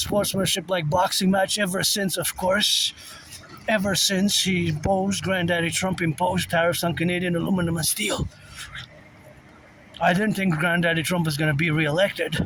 ever since, of course, Granddaddy Trump imposed tariffs on Canadian aluminum and steel. I didn't think Granddaddy Trump was going to be re-elected.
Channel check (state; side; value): identical; both; correlation 1.00